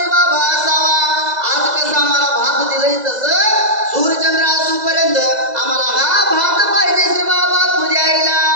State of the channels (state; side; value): late; left; 2.0 ms